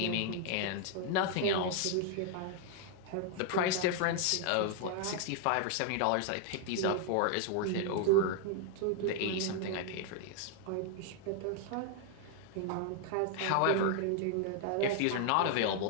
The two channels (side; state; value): both; different; correlation 0.00